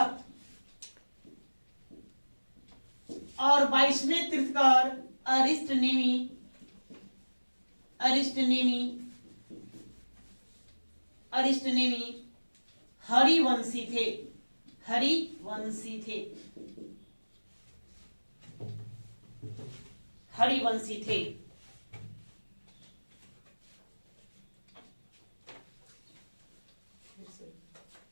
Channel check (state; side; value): inverted; both; correlation -1.00